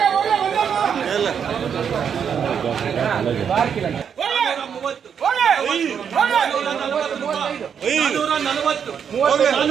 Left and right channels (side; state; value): left; quieter; 7.5 dB